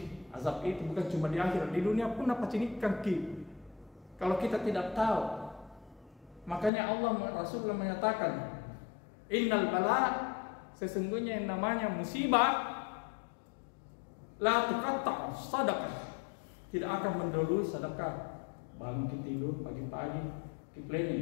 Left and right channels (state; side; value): drops out; right; at 6.7 s